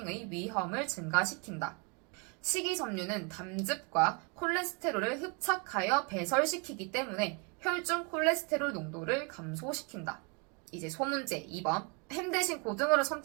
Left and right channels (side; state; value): left; quieter; 32.8 dB